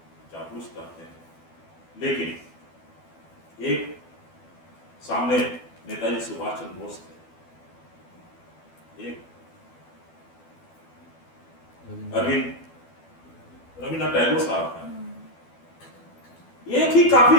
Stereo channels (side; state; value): right; late; 12 ms